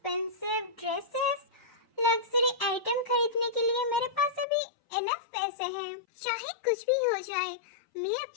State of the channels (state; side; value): drops out; right; at 4.5 s